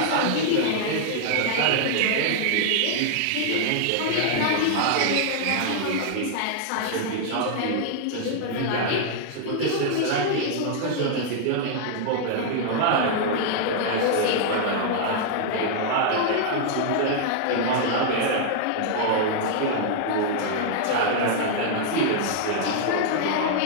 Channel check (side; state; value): both; different; correlation -0.01